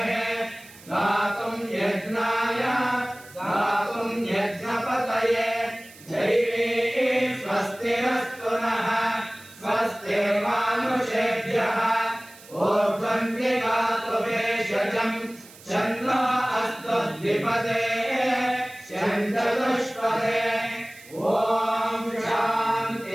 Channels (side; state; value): right; noise; hiss, 21 dB below the sound